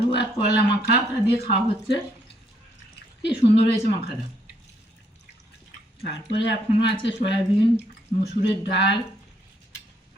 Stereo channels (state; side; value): normal; both; correlation 0.70